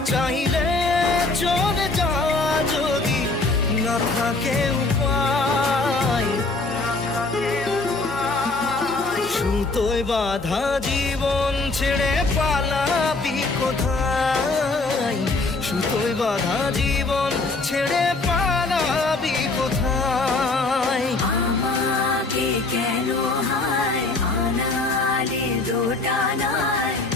চাইলে চলে যা যদি না থাকে উপায় সুতোয় বাঁধা জীবন ছেড়ে পালাবি কোথায় সুতোয় বাঁধা জীবন ছেড়ে পালাবি কোথায় আমাকে কেন হায় আনালে দোটানায়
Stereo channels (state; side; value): quieter; right; 3.5 dB